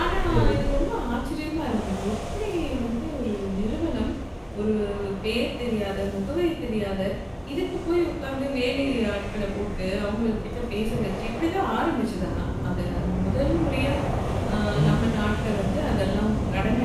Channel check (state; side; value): identical; both; correlation 1.00